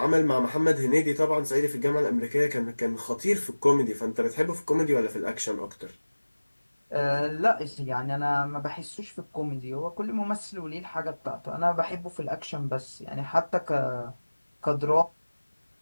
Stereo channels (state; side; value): inverted; both; correlation -1.00